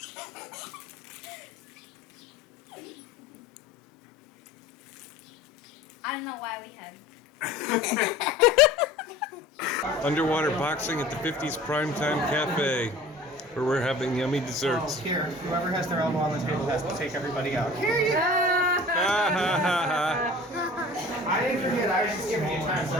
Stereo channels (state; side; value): normal; both; correlation 0.43